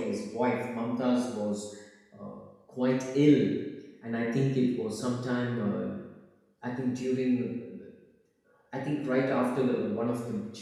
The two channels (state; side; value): identical; both; correlation 1.00